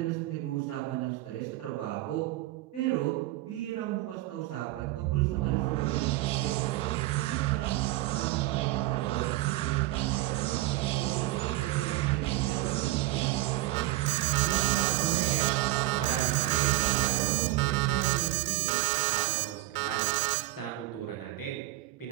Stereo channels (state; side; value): quieter; left; 17.3 dB